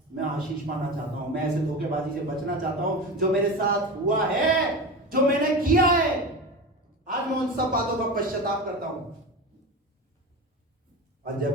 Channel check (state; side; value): normal; both; correlation 0.26